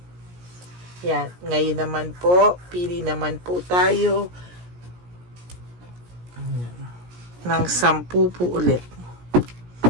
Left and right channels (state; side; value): late; left; 17 ms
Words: Yan. Ngayon naman po, pili naman po tayo ng 10 po ulit.